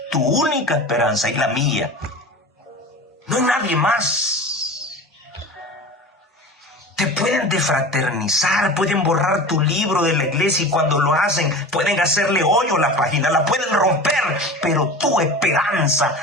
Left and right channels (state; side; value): normal; both; correlation 0.34